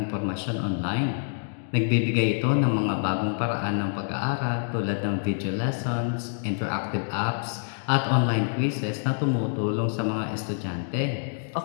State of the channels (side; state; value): right; silent; digital silence